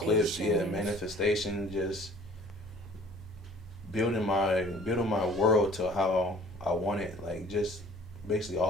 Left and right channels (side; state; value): both; normal; correlation 0.52